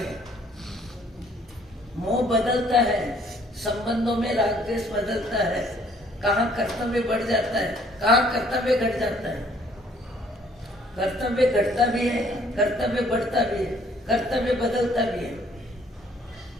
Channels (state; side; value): normal; both; correlation 0.61